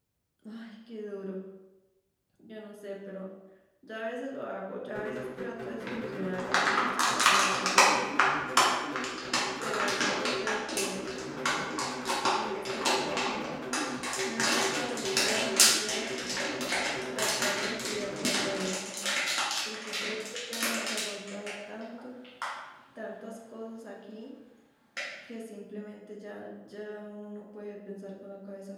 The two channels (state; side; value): identical; both; correlation 1.00